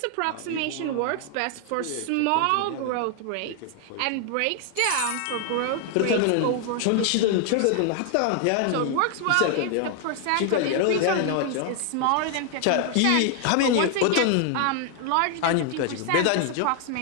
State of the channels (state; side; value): different; both; correlation 0.00